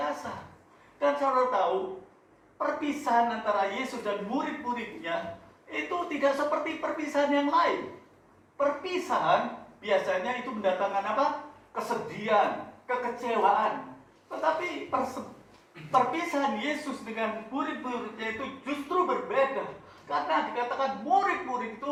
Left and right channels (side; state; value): both; identical; correlation 1.00